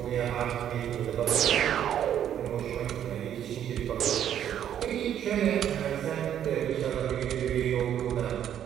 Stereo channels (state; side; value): quieter; left; 10.1 dB